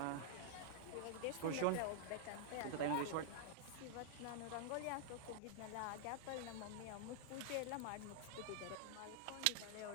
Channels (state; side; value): different; both; correlation -0.01